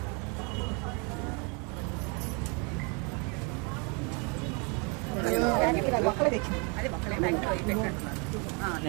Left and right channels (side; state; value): left; quieter; 33.3 dB